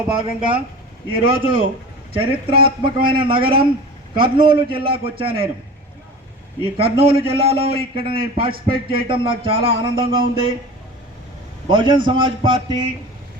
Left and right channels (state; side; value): normal; both; correlation 0.36